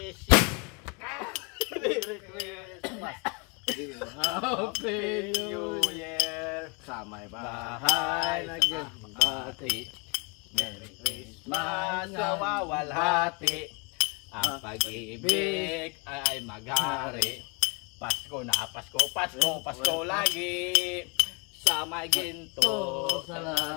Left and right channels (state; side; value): quieter; right; 30.3 dB